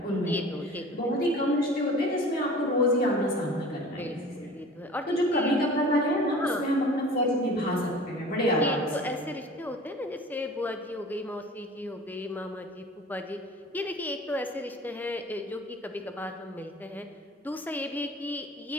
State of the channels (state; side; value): normal; both; correlation 0.42